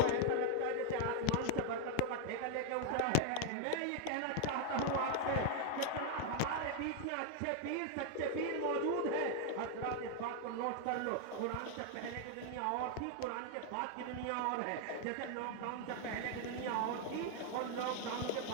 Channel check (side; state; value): both; different; correlation 0.00